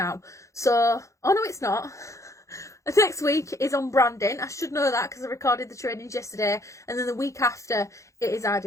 So, oh no, it's not. Next week is on branding. I should know that because I recorded the trainings yesterday. And then the week after, it is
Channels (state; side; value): late; right; 0.15 ms